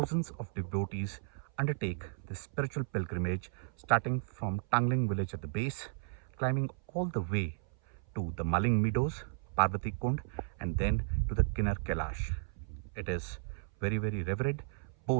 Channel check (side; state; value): left; silent; 55 dB below the other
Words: of devotees undertake this spiritual pilgrimage, starting from Tangling village at the base, climbing all the way to the Maling Meadows, Parvati Kund, and then to the Kinnaur Kailash. It is very, very revered